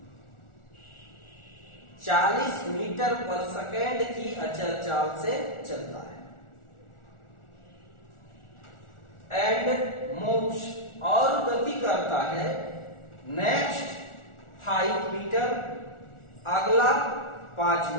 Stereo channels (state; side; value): late; right; 1.4 ms